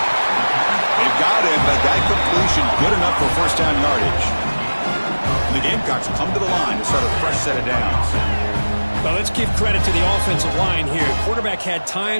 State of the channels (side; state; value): both; inverted; correlation -1.00